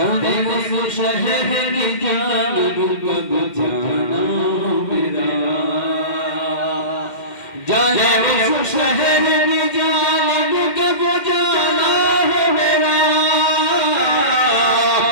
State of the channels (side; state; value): right; late; 2.1 ms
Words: उस शहर की जानिब कब जाना मेरा, जाने उस शहर की जानिब कब जाना है मेरा,